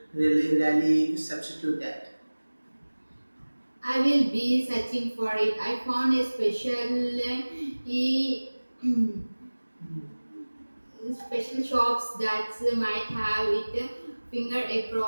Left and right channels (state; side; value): inverted; both; correlation -1.00